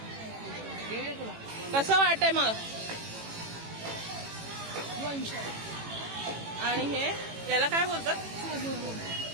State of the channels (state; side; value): late; left; 18 ms